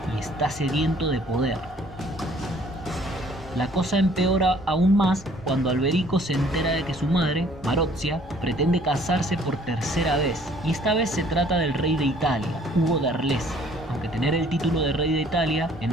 y está sediento de poder. La cosa empeora aún más cuando Alberico se entera de que su madre, Marozia, pretende casarse por tercera vez, y esta vez se trata del rey de Italia, Hugo de Arles. Aunque tener el título de rey de Italia en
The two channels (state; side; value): normal; both; correlation 0.58